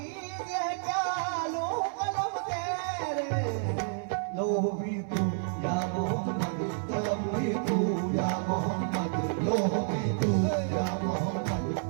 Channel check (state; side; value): silent; left; 58 dB below the other